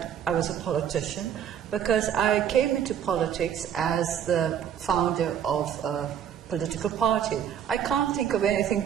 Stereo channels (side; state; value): left; quieter; 9.1 dB